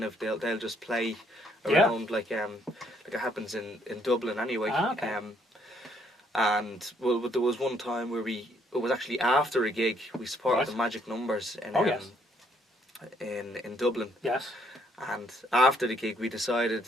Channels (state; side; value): normal; both; correlation 0.68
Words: just play around like it happens in Dublin anyway. Okay. And there was one time where it was actually after a gig we supported the Magic Numbers in Dublin. Yes. And after the gig, we decided